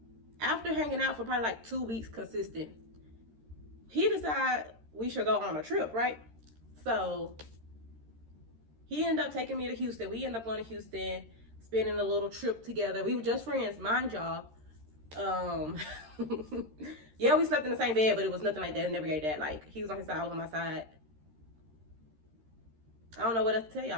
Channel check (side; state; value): left; late; 13 ms